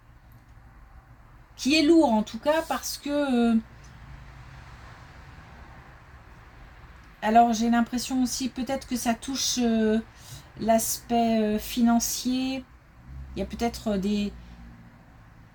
lourd en tout cas parce que alors j'ai l'impression aussi peut-être que ça touche l'aspect financier. Il y a peut-être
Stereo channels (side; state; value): both; identical; correlation 1.00